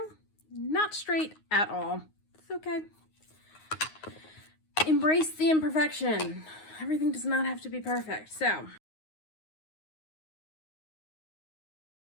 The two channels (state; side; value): late; right; 9.5 ms